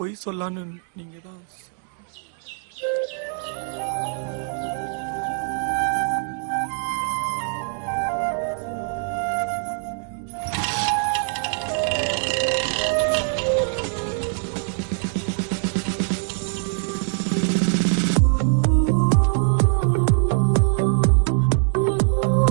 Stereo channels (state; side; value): silent; left; 59 dB below the other